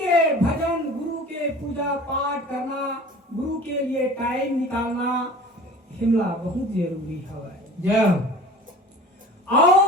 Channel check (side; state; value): both; normal; correlation 0.42